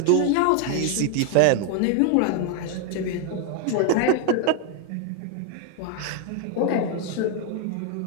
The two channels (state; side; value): different; both; correlation 0.00